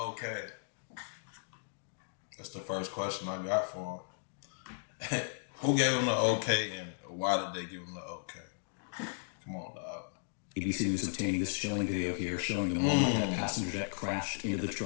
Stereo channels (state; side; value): silent; right; digital silence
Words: That's the first question I got for him. Who gave him the okay and why did they give him the okay? Come on, dog. ABC News obtaining this chilling video here showing the moment that passenger jet crashed into the